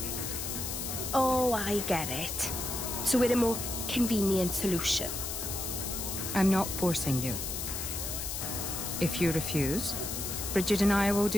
Oh, I get it. So we're a more convenient solution. I'm not forcing you. If you refuse, Bridget and I will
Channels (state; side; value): noise; left; hiss, 4 dB below the sound